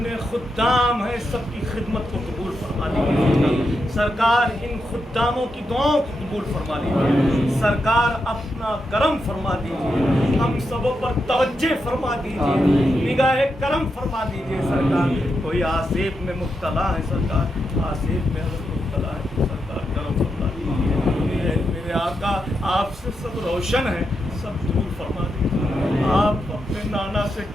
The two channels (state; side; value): normal; both; correlation 0.85